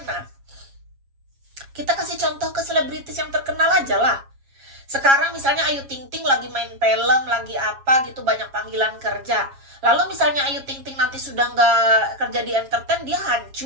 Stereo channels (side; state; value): left; late; 7.3 ms